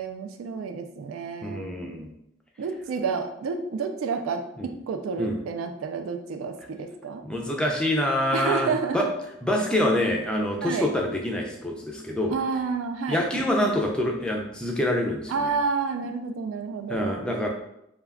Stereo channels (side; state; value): both; normal; correlation 0.38